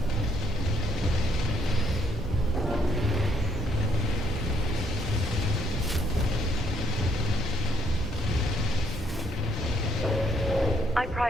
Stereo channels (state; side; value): normal; both; correlation 0.71